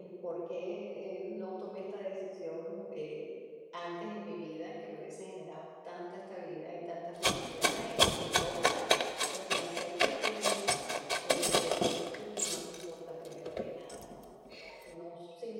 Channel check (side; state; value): both; identical; correlation 1.00